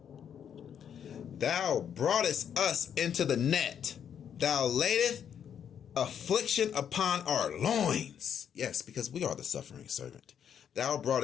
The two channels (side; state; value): right; quieter; 8.5 dB